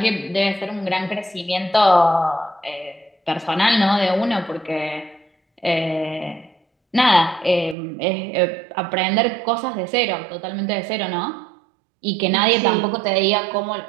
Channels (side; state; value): left; drops out; at 7.8 s